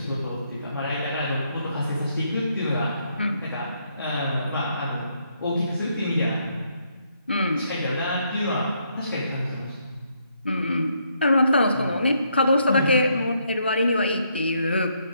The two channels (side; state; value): both; inverted; correlation -0.74